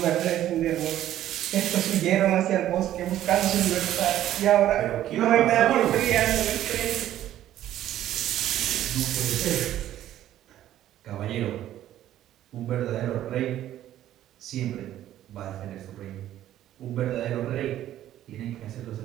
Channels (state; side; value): quieter; left; 12.6 dB